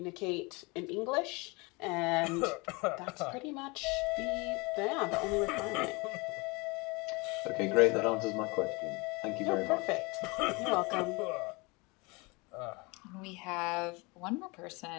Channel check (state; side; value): quieter; right; 26.9 dB